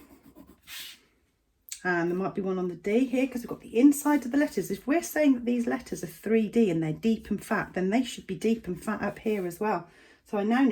And there might be one on the D here, because we've got the inside of the letters. If we're saying that these letters are 3D and they're deep and fat, then they should be deep and fat up here as well. So I now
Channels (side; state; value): both; identical; correlation 1.00